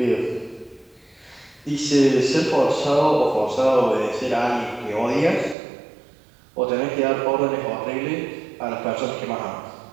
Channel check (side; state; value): left; drops out; at 5.6 s